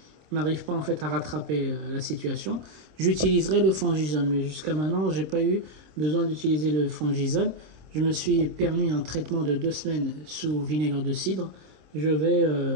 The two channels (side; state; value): left; late; 26 ms